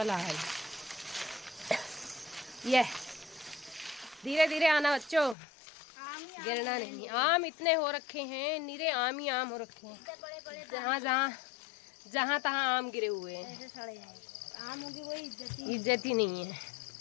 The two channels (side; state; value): right; drops out; at 5.4 s